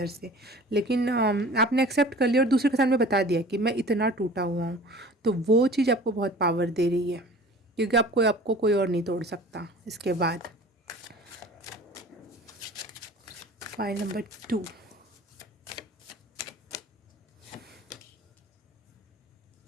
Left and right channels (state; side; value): normal; both; correlation 0.43